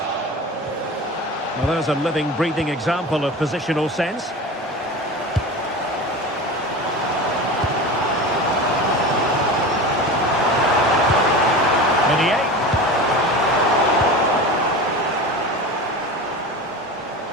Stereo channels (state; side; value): normal; both; correlation 0.30